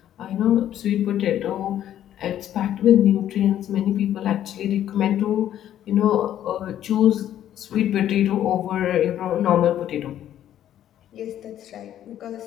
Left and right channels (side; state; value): right; quieter; 11.3 dB